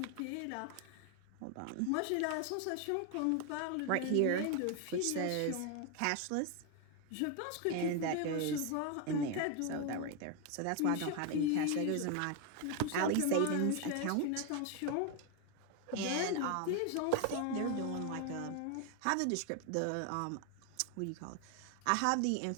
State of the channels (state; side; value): different; both; correlation 0.01